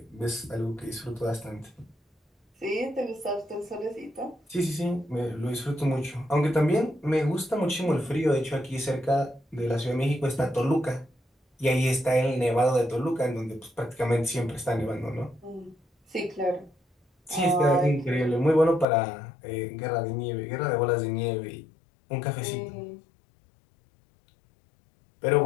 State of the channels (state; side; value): drops out; right; at 18.9 s